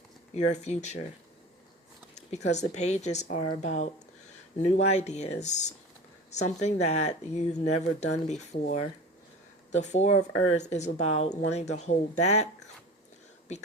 your future, because the pages are about new ideas, something that you've never done before. The Four of Earth is about wanting to hold back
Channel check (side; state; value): both; normal; correlation 0.35